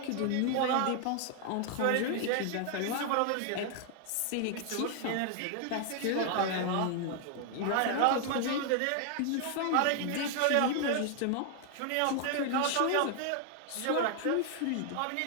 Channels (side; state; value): both; different; correlation 0.00